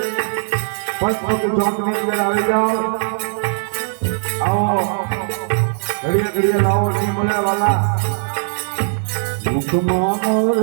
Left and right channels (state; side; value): silent; left; digital silence